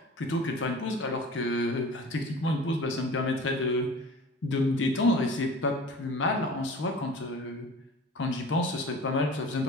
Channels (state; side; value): normal; both; correlation 0.40